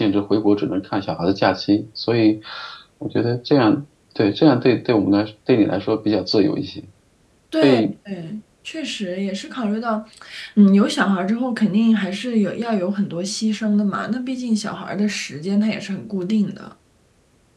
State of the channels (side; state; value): both; identical; correlation 1.00